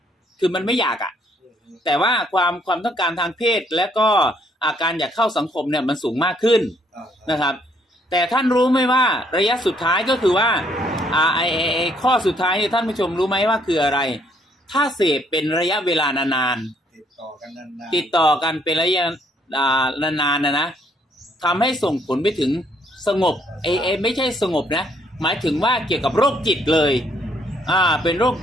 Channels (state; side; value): normal; both; correlation 0.68